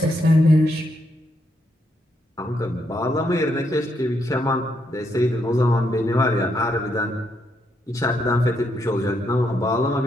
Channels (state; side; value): normal; both; correlation 0.78